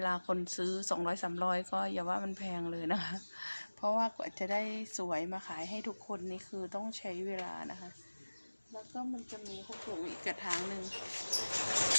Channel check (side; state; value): both; inverted; correlation -1.00